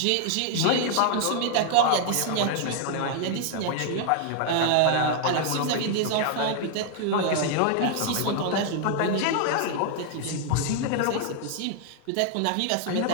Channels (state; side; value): different; both; correlation 0.00